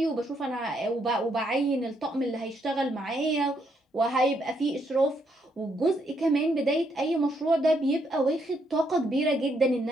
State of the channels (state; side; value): normal; both; correlation 0.75